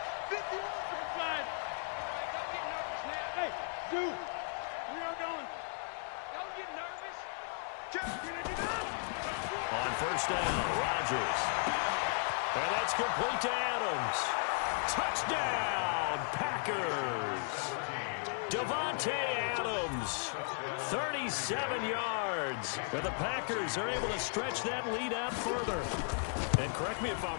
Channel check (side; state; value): right; silent; 54 dB below the other